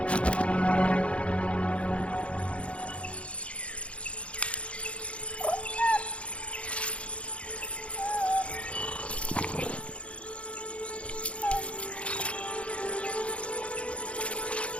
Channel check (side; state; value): right; late; 0.061 ms